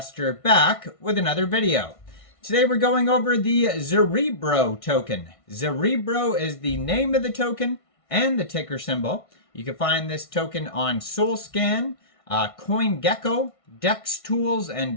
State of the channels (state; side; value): late; right; 1.6 ms